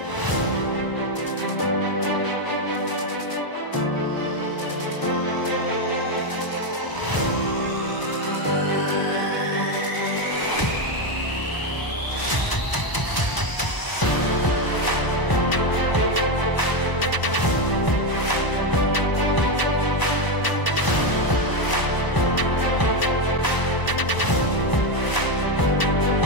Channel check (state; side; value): late; right; 1.0 ms